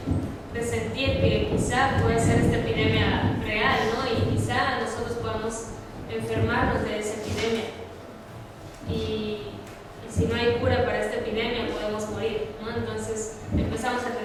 presentir que quizá puede ser esta epidemia real, ¿no? Y quizá nosotros podamos enfermarnos de esa epidemia. Y si no hay cura para esta epidemia, podemos morir, ¿no? Entonces empezamos a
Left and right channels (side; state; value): both; identical; correlation 1.00